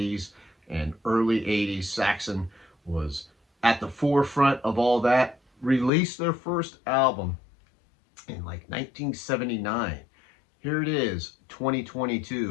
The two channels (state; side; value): drops out; right; at 5.9 s